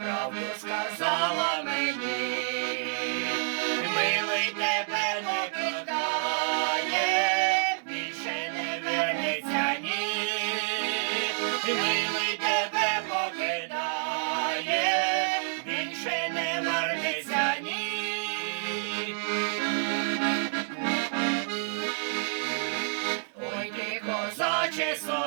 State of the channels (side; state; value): left; silent; 59 dB below the other